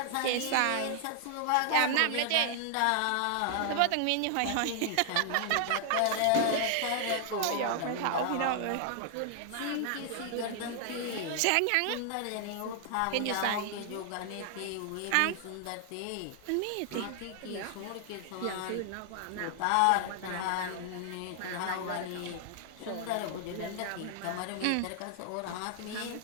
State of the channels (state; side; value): different; both; correlation 0.00